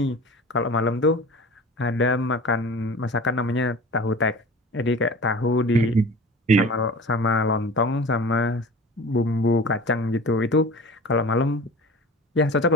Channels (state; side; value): normal; both; correlation 0.38